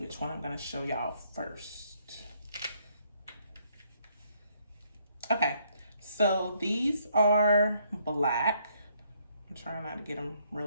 one I'm gonna show y'all first. Okay, so these are black. I'm trying not to get them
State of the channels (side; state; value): both; inverted; correlation -0.69